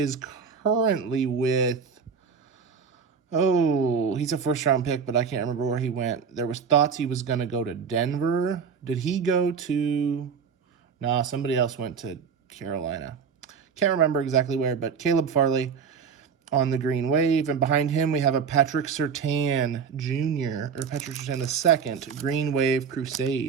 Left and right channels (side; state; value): left; quieter; 6.2 dB